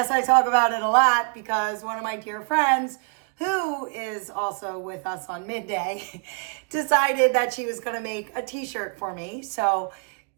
I talk about it a lot because one of my dear friends, who is also with us on Midday, decided that she was going to make a t-shirt for me. So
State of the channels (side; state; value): left; quieter; 36.6 dB